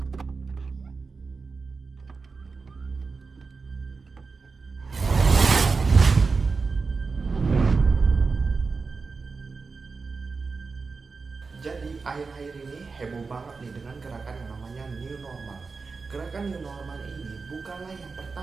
Jadi akhir-akhir ini heboh banget nih dengan gerakan yang namanya New Normal. Gerakan New Normal ini bukanlah yang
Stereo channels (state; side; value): quieter; left; 4.5 dB